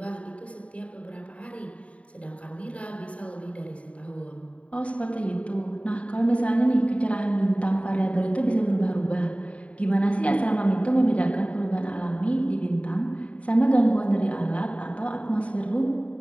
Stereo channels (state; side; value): late; right; 0.064 ms